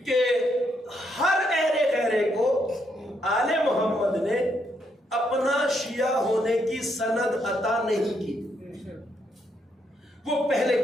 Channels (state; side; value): normal; both; correlation 0.76